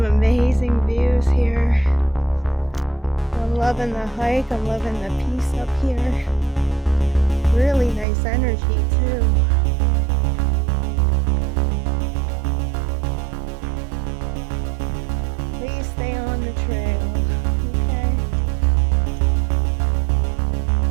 amazing views here. I'm loving the hike. I'm loving the peace up here. Really nice energy too. Please stay on the trail.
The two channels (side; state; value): left; drops out; at 8.1 s